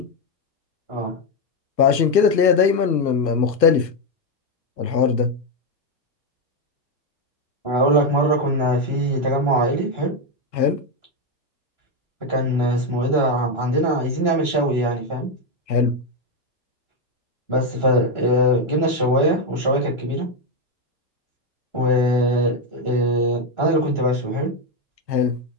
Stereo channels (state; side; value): late; right; 1.4 ms